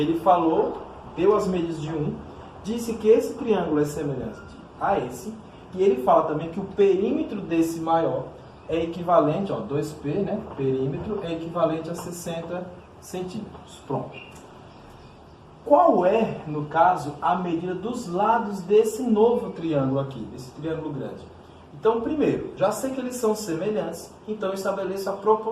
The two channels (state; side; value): identical; both; correlation 1.00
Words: falou, deu as medidas de um, disse que esse triângulo é semelhante a esse, e ele fala também que o perímetro desse maior é equivalente, ó, 2P, né? Perímetro é equivalente a 60 centímetros. Pronto. Qual é, no caso, a medida dos lados desse novo triângulo aqui, desse triângulo grande? Então, primeiro, já sei que eles são semelhantes, então estabeleço a